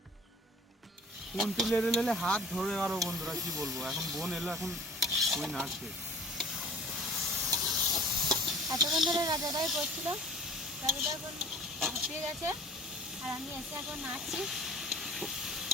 কোন তুলে হাত ধরে আরো বন্ধুরা, কি বলবো। এখন বোন এলো, এখন ওই নাচবে। এতক্ষণ ধরে রাজাদাই করছিল, রাজাদা এখন হাঁপিয়ে গেছে, আর আমি এসে এখন নাচছি।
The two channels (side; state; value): both; normal; correlation 0.44